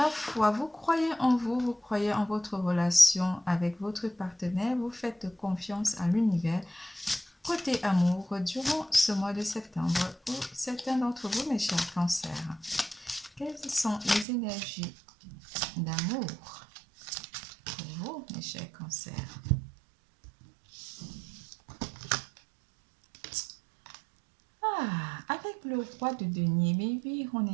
foi, vous croyez en vous, vous croyez en votre relation avec votre partenaire, vous faites confiance à l'univers. Côté amour, durant ce mois de septembre, pour certains d'entre vous, mes chers cancers, quelles sont les énergies d'amour pour vous, mes chers cancers? Avec le roi de denier, mais oui, on est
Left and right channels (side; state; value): left; drops out; at 14.2 s